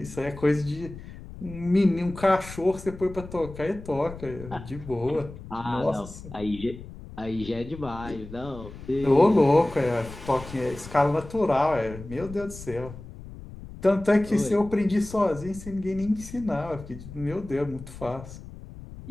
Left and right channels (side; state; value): left; noise; rumble, 14 dB below the sound